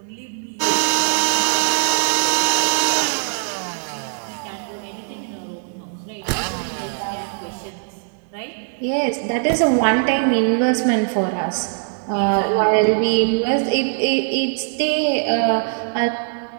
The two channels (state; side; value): silent; left; digital silence